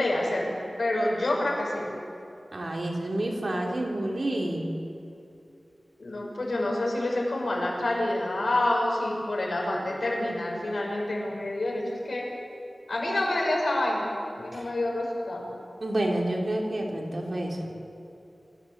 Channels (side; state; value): both; normal; correlation 0.96